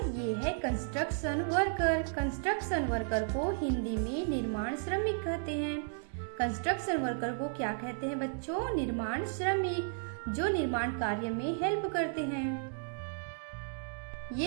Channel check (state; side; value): silent; left; digital silence